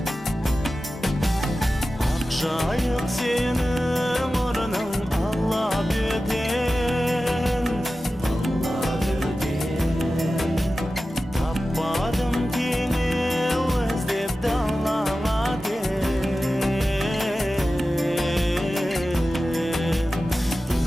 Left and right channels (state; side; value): normal; both; correlation 0.94